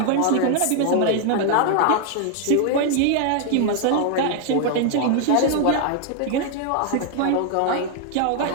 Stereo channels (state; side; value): different; both; correlation 0.00